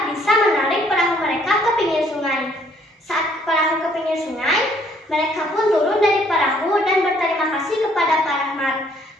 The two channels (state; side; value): normal; both; correlation 0.64